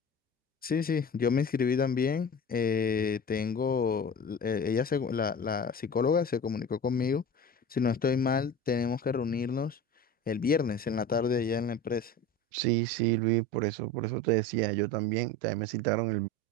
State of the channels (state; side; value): normal; both; correlation 0.34